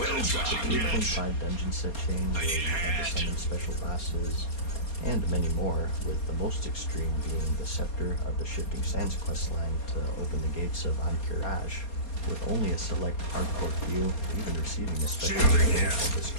3.5 dungeon set chain where you have to summon special bosses, and many more, with the most extreme being the Scepter of the Shifting Sands questline to open the gates of Ahn'Qiraj, with only a select hardcore few even receiving a special title of the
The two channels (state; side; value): late; right; 4.2 ms